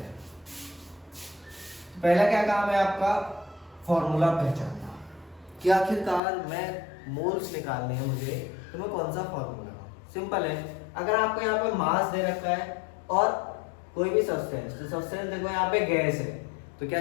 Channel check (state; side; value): drops out; right; at 6.2 s